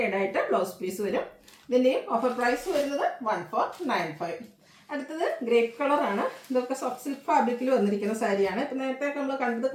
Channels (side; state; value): both; identical; correlation 1.00